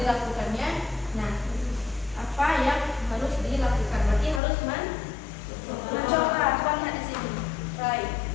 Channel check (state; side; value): drops out; right; at 4.4 s